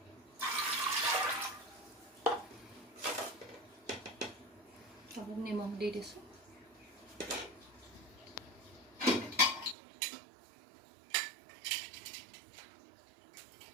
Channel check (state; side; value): drops out; left; at 9.8 s